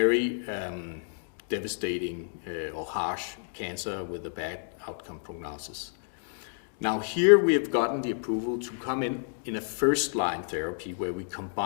devastating or harsh cancer with a bad outcome prognosis. Now here we have gotten the approval to come in a first-line therapy where we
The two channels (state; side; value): silent; right; 58 dB below the other